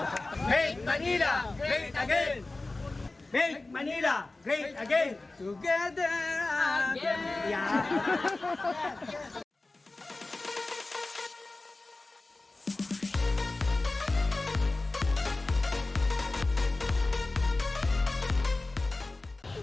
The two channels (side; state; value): right; quieter; 3.1 dB